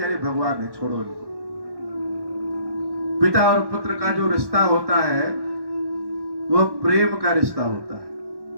अरे भगवान है, छोड़ो इनको। पिता और पुत्र का जो रिश्ता होता है वह प्रेम का रिश्ता होता है,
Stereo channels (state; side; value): late; left; 1.1 ms